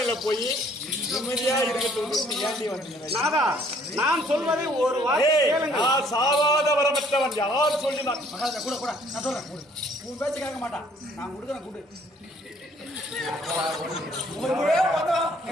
போய் நிம்மதியா நாதா நான் சொல்வதை ஒரு நான் சாவாத வரமற்றவன் யார் சொல்லினான் கூட கூட நான் சொல்றேன் உன் பேச்சு கேட்க மாட்டான் நான் கொடுக்குறேன் கூடு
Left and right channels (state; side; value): normal; both; correlation 0.61